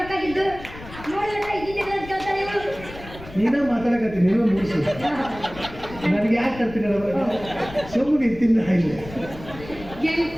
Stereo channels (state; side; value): noise; left; rumble, 16 dB below the sound